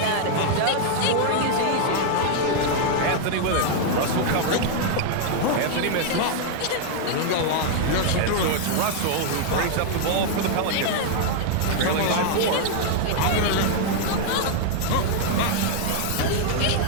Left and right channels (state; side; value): different; both; correlation 0.00